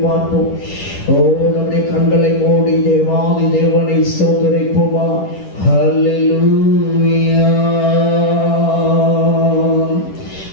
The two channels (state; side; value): late; right; 10 ms